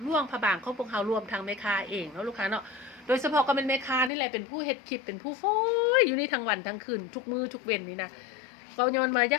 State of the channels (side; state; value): right; drops out; at 4.1 s